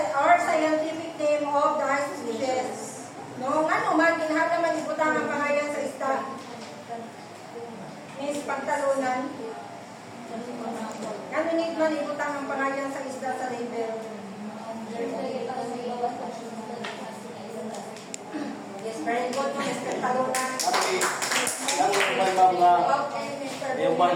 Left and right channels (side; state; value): both; identical; correlation 1.00